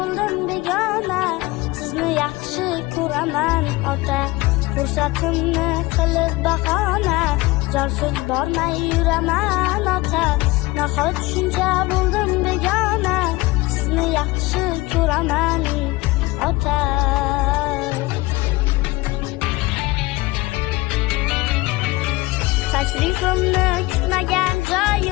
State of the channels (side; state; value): right; quieter; 21.2 dB